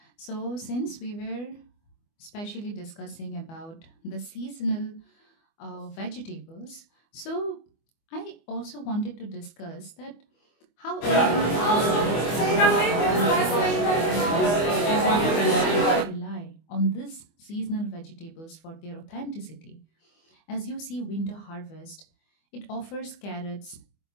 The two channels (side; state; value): right; late; 24 ms